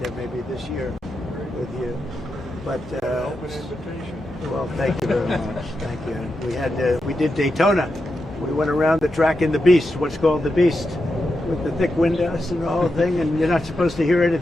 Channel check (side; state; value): both; normal; correlation 0.87